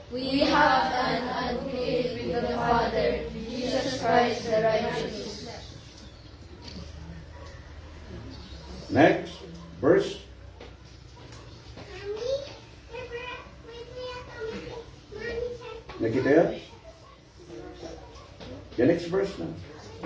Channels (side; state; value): both; identical; correlation 1.00